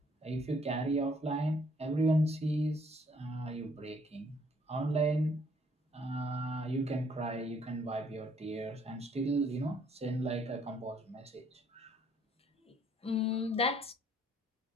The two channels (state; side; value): normal; both; correlation 0.64